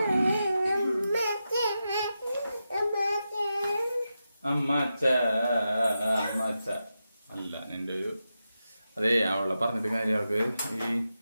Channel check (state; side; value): inverted; both; correlation -0.89